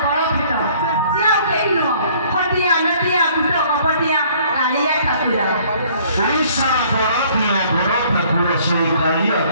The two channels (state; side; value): inverted; both; correlation -0.58